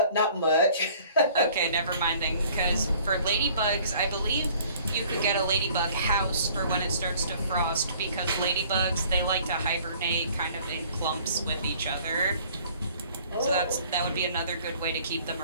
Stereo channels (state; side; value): inverted; both; correlation -0.54